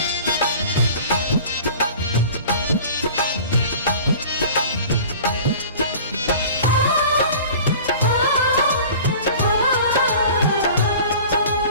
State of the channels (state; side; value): inverted; both; correlation -0.42